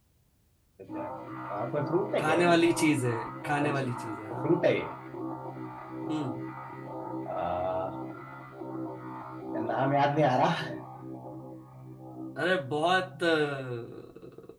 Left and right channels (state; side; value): identical; both; correlation 1.00